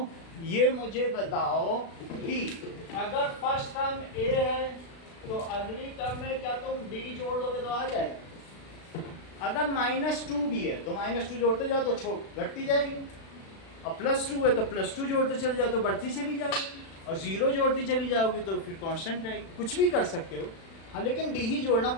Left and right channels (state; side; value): late; right; 36 ms